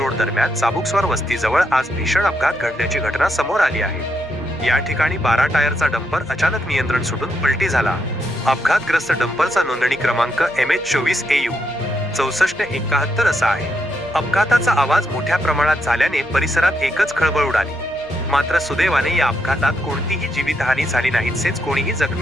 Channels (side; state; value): left; noise; hum, 28 dB below the sound